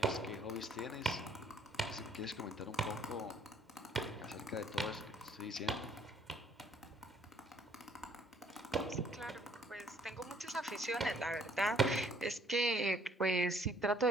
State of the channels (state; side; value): normal; both; correlation 0.61